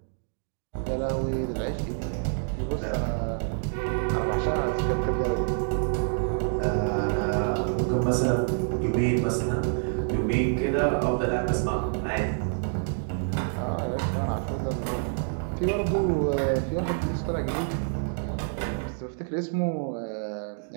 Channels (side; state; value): left; silent; digital silence